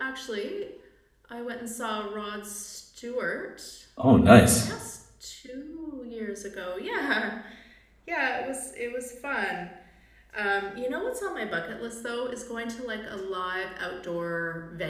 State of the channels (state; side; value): identical; both; correlation 1.00